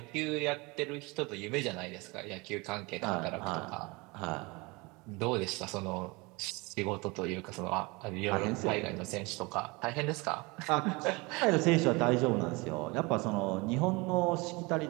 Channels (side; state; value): left; quieter; 25.7 dB